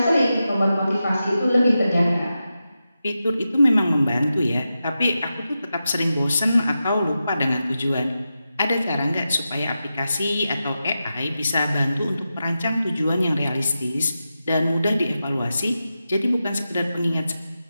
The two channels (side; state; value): both; inverted; correlation -0.90